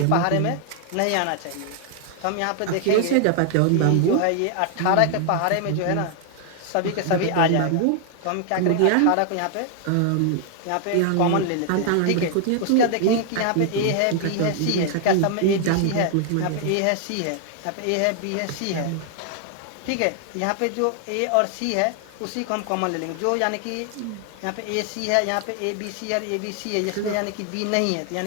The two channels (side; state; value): both; different; correlation 0.00